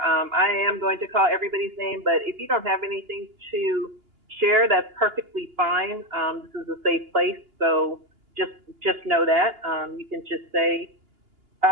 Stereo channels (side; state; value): left; late; 2.8 ms